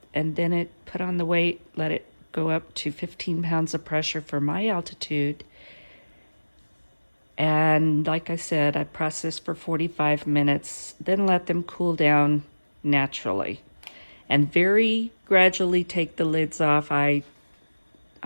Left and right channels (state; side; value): inverted; both; correlation -1.00